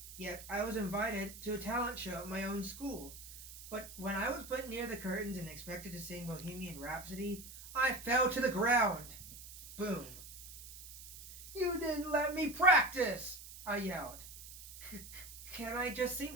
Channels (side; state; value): right; noise; hiss, 14 dB below the sound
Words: Yet I was invited to a talent show at my own school. But when I was put near the curtains and expected to sing Bohemian Rhapsody, I fell to the ground. Boom. You didn't let me practice, I yelled. Can I just sing